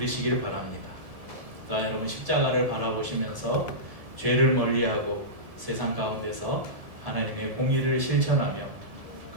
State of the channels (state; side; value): late; left; 1.7 ms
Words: 바랍니다. 또한 여러분 십자가를 바라보시면서 죄를 멀리하고 세상 가운데서 하나님의 공의를 실천하며